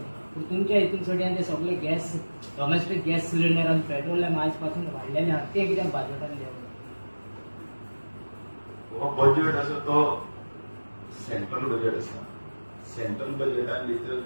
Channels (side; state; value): both; inverted; correlation -1.00